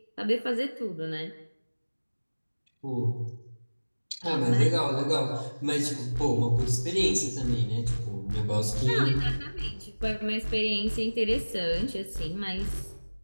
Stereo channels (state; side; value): inverted; both; correlation -1.00